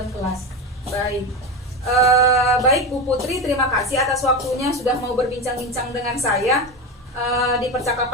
kelas. Baik. Baik Bu Putri, terima kasih atas waktunya sudah mau berbincang-bincang dengan saya di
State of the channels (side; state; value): both; normal; correlation 0.20